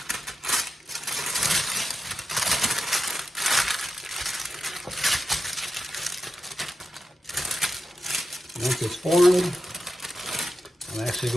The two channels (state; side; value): normal; both; correlation 0.89